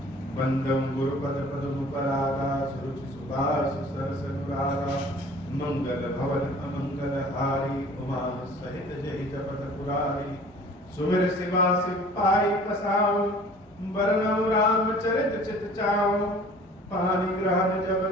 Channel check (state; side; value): normal; both; correlation 0.49